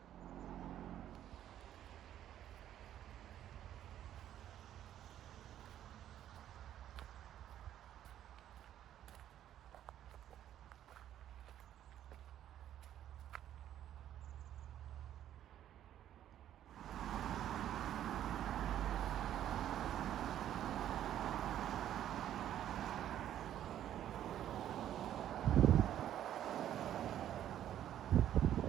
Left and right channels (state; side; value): quieter; left; 11.3 dB